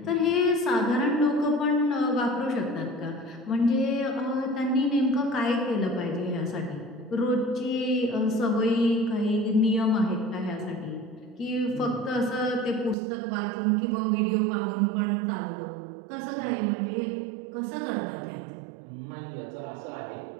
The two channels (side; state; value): left; drops out; at 13.0 s